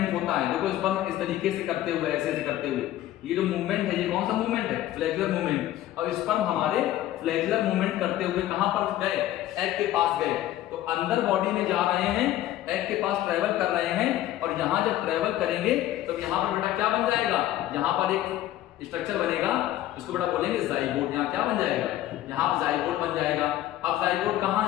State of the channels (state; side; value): quieter; right; 13.8 dB